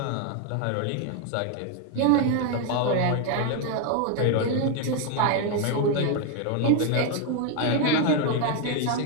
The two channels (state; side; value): different; both; correlation 0.01